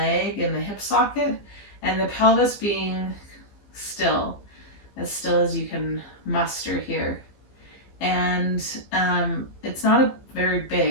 and the hip socket, and the pelvis being still as you can muster here. And it's not a very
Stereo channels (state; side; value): late; right; 15 ms